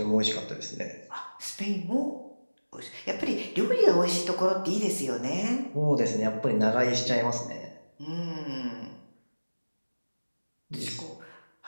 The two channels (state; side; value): inverted; both; correlation -1.00